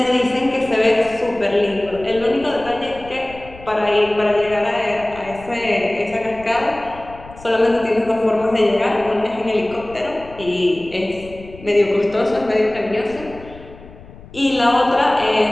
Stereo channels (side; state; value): left; noise; rumble, 19 dB below the sound